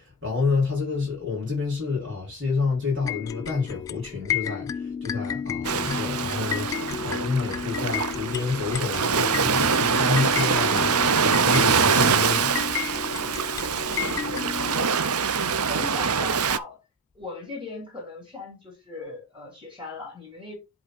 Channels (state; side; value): normal; both; correlation 0.15